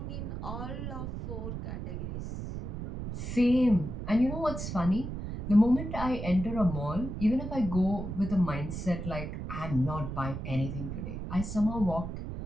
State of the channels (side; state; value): right; noise; rumble, 6 dB below the sound